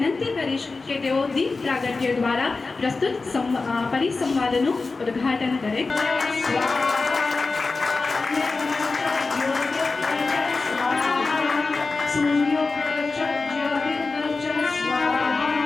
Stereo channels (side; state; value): right; quieter; 3.9 dB